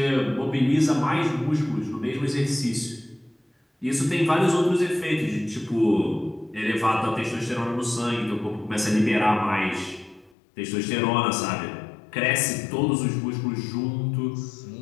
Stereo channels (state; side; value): drops out; right; at 10.4 s